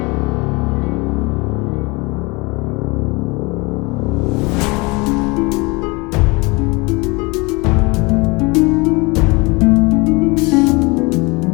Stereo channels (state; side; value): quieter; right; 26.4 dB